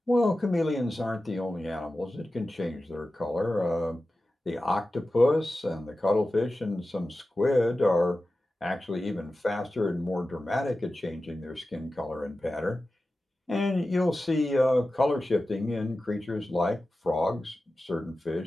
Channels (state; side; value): normal; both; correlation 0.94